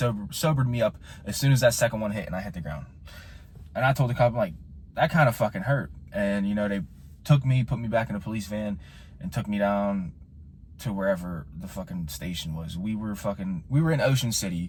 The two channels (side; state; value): both; identical; correlation 1.00